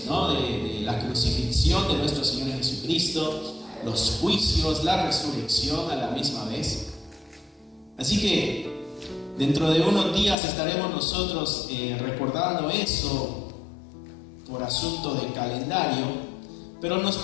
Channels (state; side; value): drops out; right; at 10.4 s